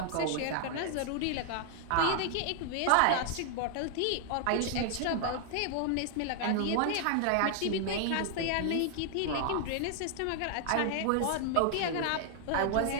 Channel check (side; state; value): both; different; correlation 0.00